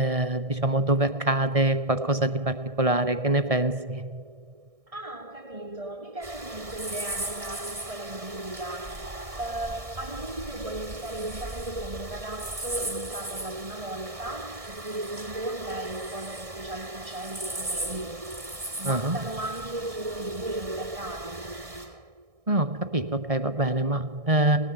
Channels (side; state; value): left; late; 1.6 ms